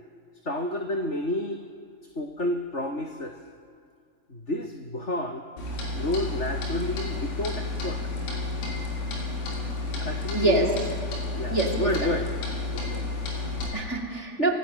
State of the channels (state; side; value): late; right; 3.4 ms